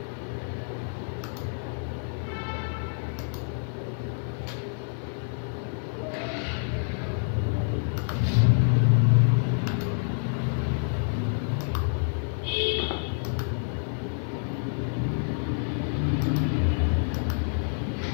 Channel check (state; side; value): silent; right; 60 dB below the other